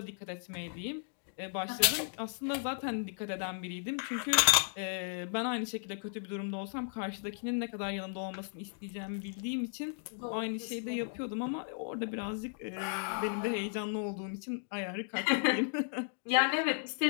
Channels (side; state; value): right; silent; digital silence